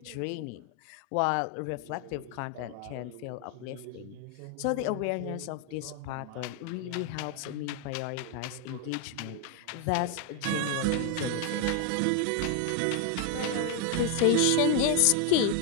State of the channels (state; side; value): different; both; correlation 0.01